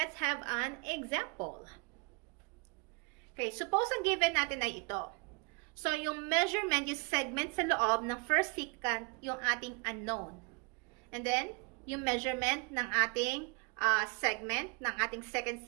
have an example. Okay, suppose ang given natin ay ito. So, yung measurement, yung segment sa loob ng first secant, yung ating unknown. And then, yung measurement ng ating segment ng ating second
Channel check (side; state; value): left; quieter; 31.9 dB